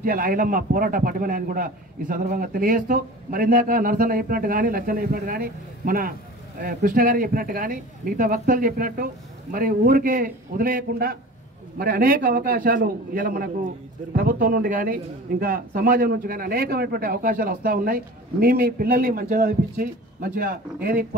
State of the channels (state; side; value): normal; both; correlation 0.38